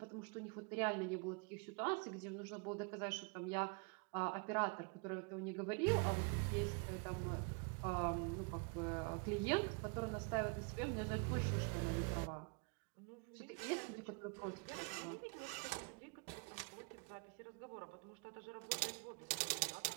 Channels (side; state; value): left; quieter; 31.1 dB